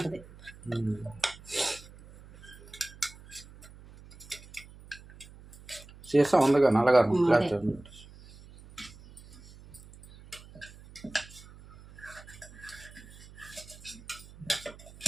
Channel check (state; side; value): noise; right; hum, 20 dB below the sound